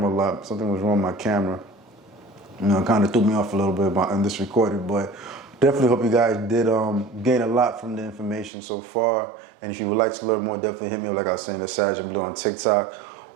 a lot. Something was wrong with my camera. You know, it kind of threw me off a little bit in this recording, but definitely hope you guys did gain a lot from the information so far. And if you would like to learn more, definitely hit me up, like I was saying, at SagInBlue on TikTok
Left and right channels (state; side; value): drops out; left; at 8.5 s